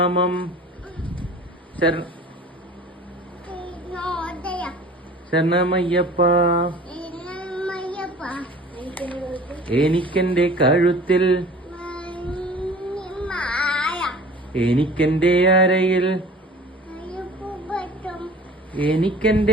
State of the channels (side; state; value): both; normal; correlation 0.44